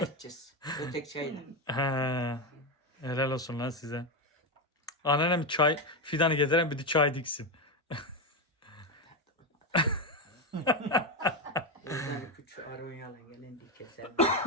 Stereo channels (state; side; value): normal; both; correlation 0.10